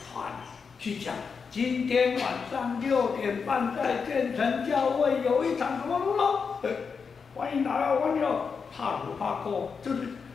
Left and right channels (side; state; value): right; quieter; 5.6 dB